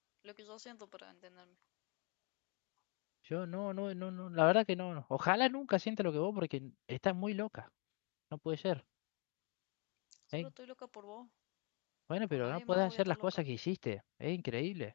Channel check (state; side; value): quieter; right; 35.9 dB